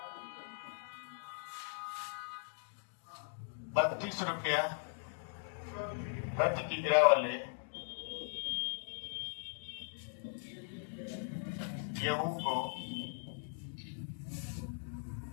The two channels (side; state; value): right; silent; digital silence